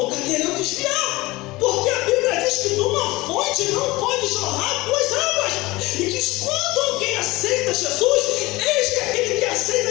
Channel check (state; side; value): quieter; right; 20.7 dB